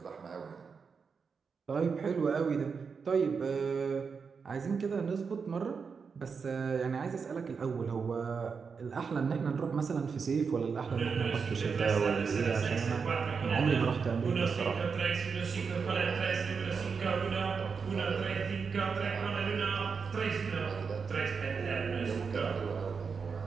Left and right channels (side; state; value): left; quieter; 5.6 dB